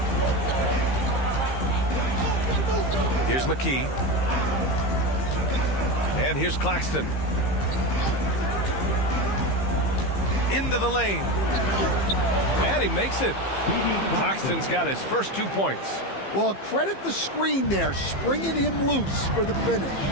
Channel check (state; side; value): late; right; 15 ms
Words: Here's McKee. And here's Claxton. Into the lane. And he makes it. Claxton's got his first 2 points. Well, credit the screen there, springing him loose for the finish.